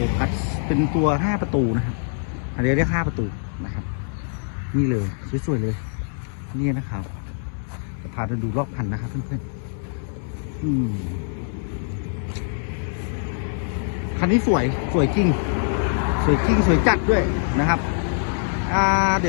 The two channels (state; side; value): silent; right; 63 dB below the other